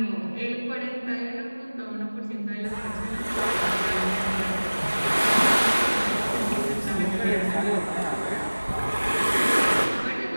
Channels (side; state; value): both; inverted; correlation -1.00